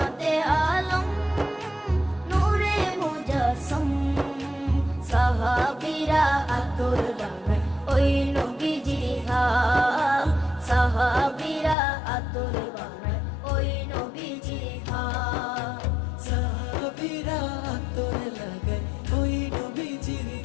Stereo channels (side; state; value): right; drops out; at 11.8 s